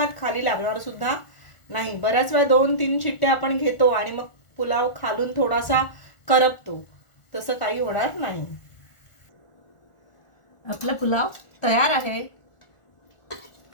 खाली लागणार सुद्धा नाही। बऱ्याच वेळा 2-3 शिट्ट्या आपण घेतो आणि मग पुलाव खालून थोडासा करपतो, तसं काही होणार नाही। आपला पुलाव तयार आहे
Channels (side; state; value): right; late; 1.4 ms